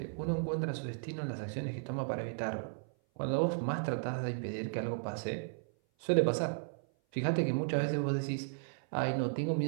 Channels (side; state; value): left; silent; 54 dB below the other